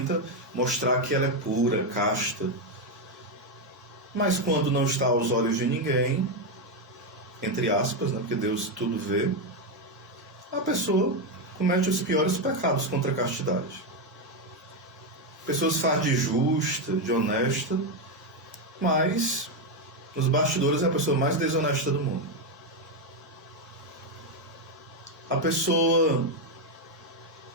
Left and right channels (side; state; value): both; normal; correlation 0.06